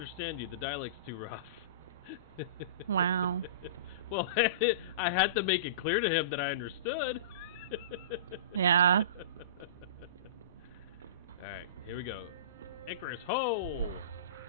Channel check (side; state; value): both; inverted; correlation -0.32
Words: you. The dialect's too rough. Wow. Well, I had to make it clear to him that I understood. Yeah. Alright, here we go. Icarus, ho!